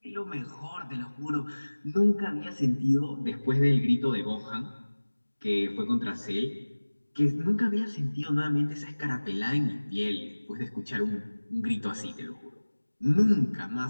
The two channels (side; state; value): both; inverted; correlation -1.00